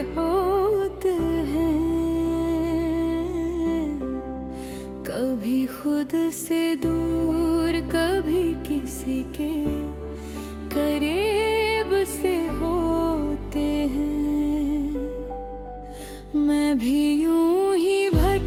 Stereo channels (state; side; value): identical; both; correlation 1.00